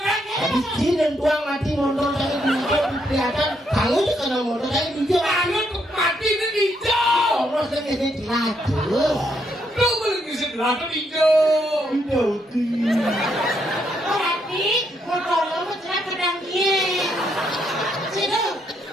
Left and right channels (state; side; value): normal; both; correlation 0.75